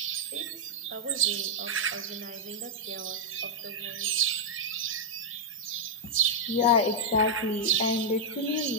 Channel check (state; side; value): normal; both; correlation -0.04